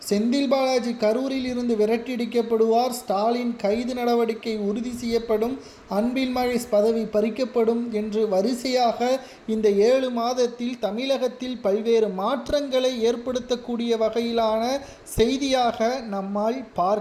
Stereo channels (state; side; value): identical; both; correlation 1.00